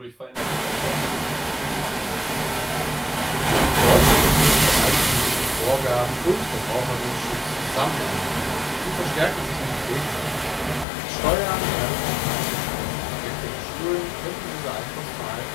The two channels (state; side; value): drops out; right; at 10.9 s